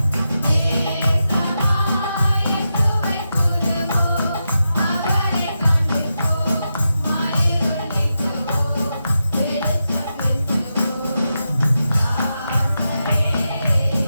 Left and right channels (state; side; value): inverted; both; correlation -0.88